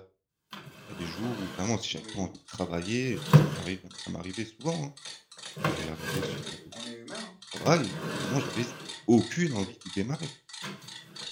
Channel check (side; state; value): both; identical; correlation 1.00